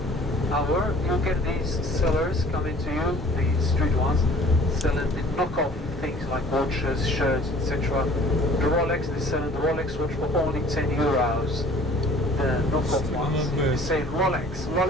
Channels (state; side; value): normal; both; correlation 0.51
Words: hour. You'll get these sellers coming to you, the street ones, selling the knockoff things like watches, shirts, etc. The Rolex, they're selling the Rolex watch for only 10 euros. The knockoff ones, they say Rolex.